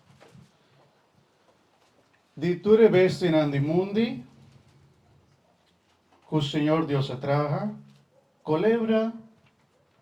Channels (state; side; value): identical; both; correlation 1.00